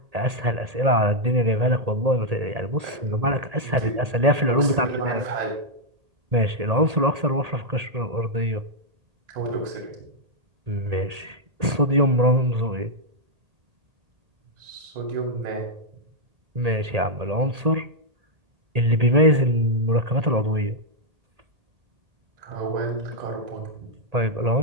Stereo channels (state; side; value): late; left; 1.8 ms